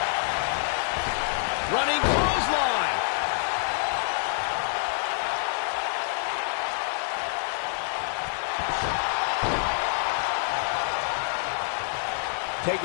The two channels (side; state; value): right; silent; 60 dB below the other